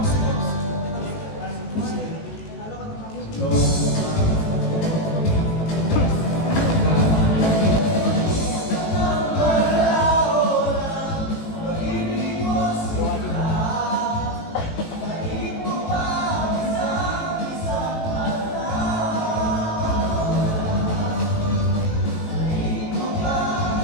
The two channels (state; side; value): late; right; 19 ms